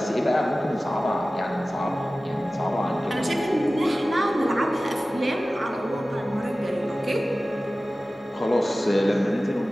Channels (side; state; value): both; normal; correlation 0.96